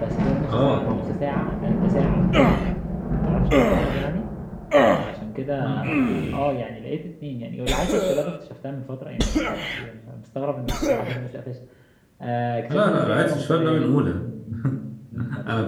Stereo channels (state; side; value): identical; both; correlation 1.00